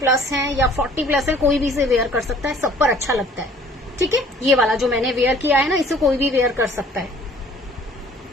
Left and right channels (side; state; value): both; normal; correlation 0.53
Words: हैं या 40 प्लस है, कोई भी इसे वेयर कर सकता है, सब पर अच्छा लगता है, ठीक है। ये वाला जो मैंने वेयर किया है ना, इसे कोई भी वेयर कर सकता है।